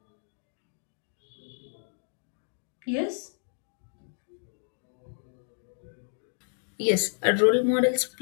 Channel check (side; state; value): right; silent; digital silence